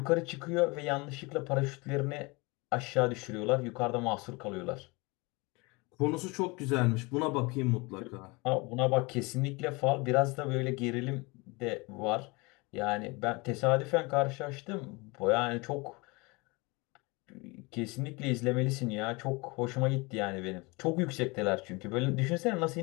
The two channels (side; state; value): right; quieter; 26.3 dB